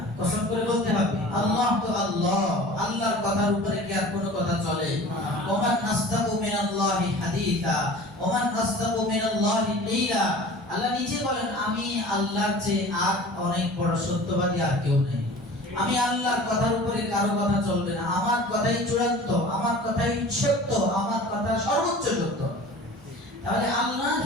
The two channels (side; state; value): both; normal; correlation 0.41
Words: কসম করে বলতে হবে। আল্লাহ তো আল্লাহ, আল্লাহর কথার উপরে কি আর কোনো কথা চলে? ওমান নাসদাকু মিনাল্লাহি হাদিসা ওমান নাসদাকু মিনাল্লাহি কিলা, আল্লাহ নিজে বলেন আমি আল্লাহর চেয়ে আর অনেক বড় সত্যবাদী আর কেউ নেই। আমি আল্লাহর কথার উপরে কারো কথা চলবে না, আমার কথাই চূড়ান্ত, আমার কথাই সত্য, আমার কথা সর্বোচ্চ সত্য। তাহলে আল্লাহ